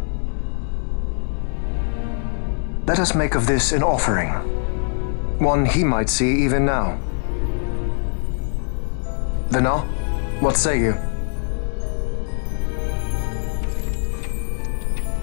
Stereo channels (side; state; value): right; silent; 64 dB below the other